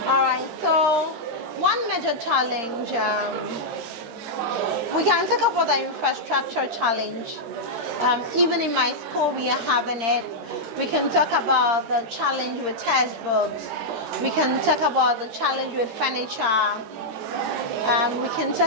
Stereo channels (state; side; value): late; left; 13 ms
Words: All right, so one major challenge, we can talk about the infrastructure challenge. Even in my school, we are having it. We can talk about the challenge with textbooks. We can talk about the challenge with furniture. We can